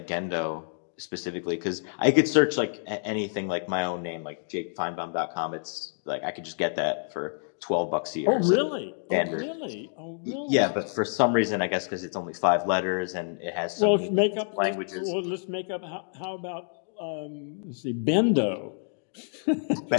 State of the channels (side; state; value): right; silent; digital silence